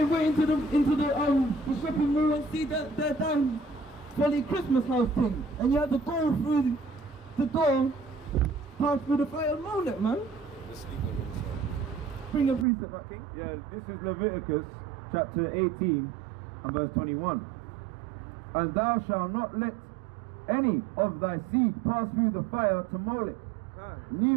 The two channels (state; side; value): drops out; left; at 12.7 s